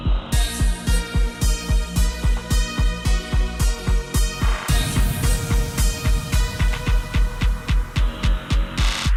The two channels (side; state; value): both; identical; correlation 1.00